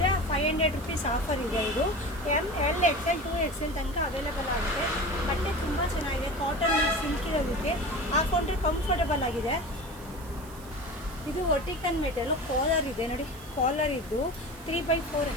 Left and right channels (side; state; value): right; noise; hiss, 20 dB below the sound